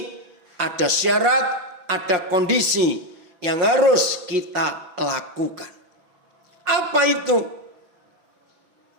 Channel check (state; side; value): late; left; 6.0 ms